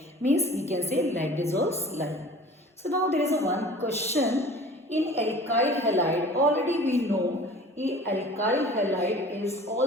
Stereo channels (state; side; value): normal; both; correlation 0.44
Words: Means we can say like dissolves like. So now there is a one question in alkyl halide. Already we know alkyl halide is